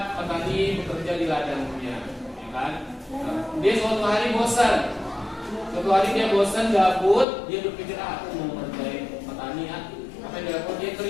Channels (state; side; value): drops out; right; at 7.2 s